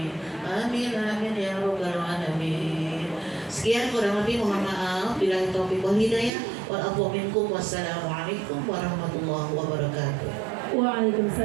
آمين آمين يا رب العالمين. Sekian kurang lebih mohon maaf bila taufiq wal hidayah wal afwa minkum wassalamualaikum warahmatullahi wabarakatuh.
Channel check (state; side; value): drops out; left; at 6.3 s